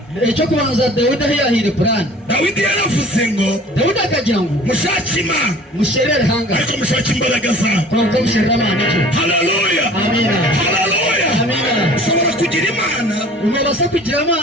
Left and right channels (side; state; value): both; normal; correlation 0.47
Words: Icyo kubanza Dawidi yahire plan. Dawidi yaravuze ngo Dawidi akagira ngo mushake Imana. Musherere hanga. Ariko mushake imbaraga zawe. Kuko musherere Imana cyo. Haleluya. Amina. Haleluya. Amina. Ushobora kugira Imana. Umubasa kugira